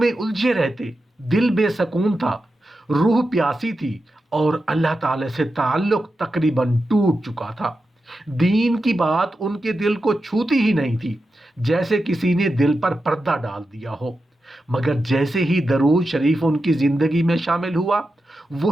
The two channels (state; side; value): normal; both; correlation 0.90